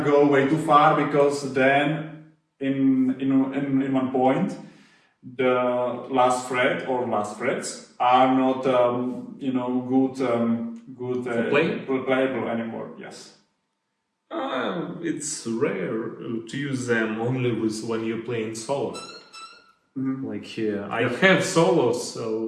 go way too far, because then in one point the last fret or last frets are not playable anymore. Yes. It's rare to use them only when you're playing solo. Like here, I have solos,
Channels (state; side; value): identical; both; correlation 1.00